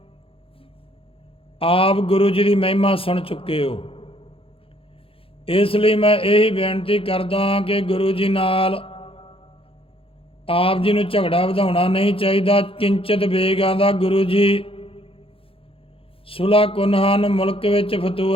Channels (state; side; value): late; right; 0.27 ms